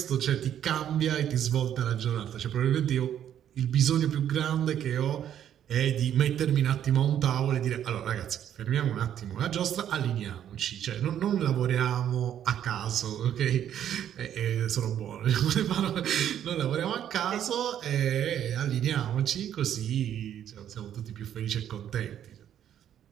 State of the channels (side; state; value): left; quieter; 10.2 dB